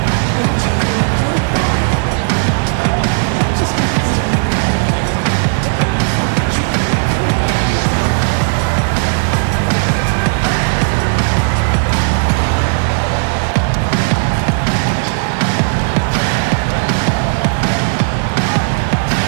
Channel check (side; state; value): left; silent; digital silence